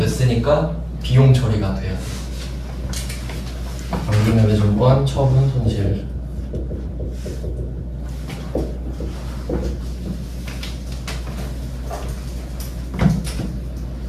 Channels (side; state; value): both; identical; correlation 1.00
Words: 비용 처리가 돼요. 단기매매증권 처분 손실.